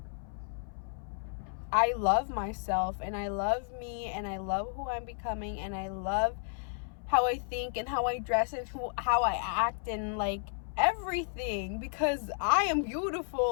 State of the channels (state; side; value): silent; right; 56 dB below the other